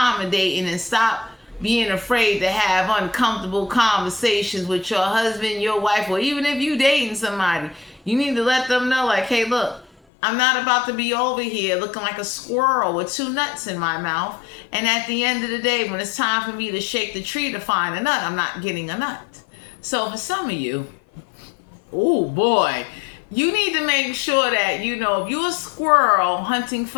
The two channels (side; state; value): right; drops out; at 9.9 s